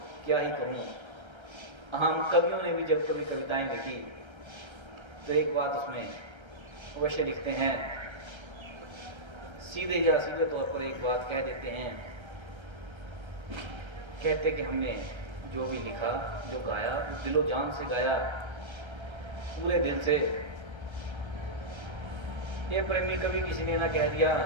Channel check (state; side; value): late; left; 1.3 ms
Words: क्या ही कहूं। हम कवियों ने भी जब कभी कविताएं लिखी तो एक बात उसमें अवश्य लिखते हैं, सीधे या सीधे तौर पर एक बात कह देते हैं। कहते कि हमने जो भी लिखा, जो गाया, दिलो जान से गाया, पूरे दिल से। ये प्रेमी कभी किसी ने ना कह दिया